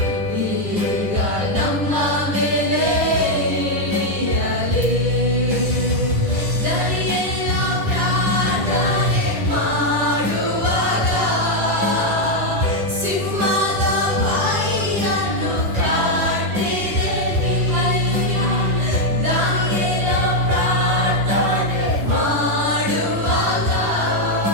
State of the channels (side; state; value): left; late; 10 ms